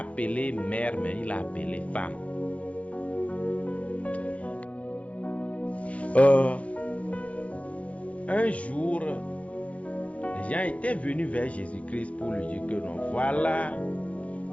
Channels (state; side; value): late; right; 0.064 ms